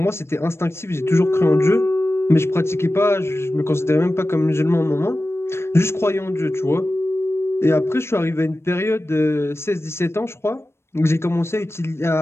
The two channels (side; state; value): right; late; 0.12 ms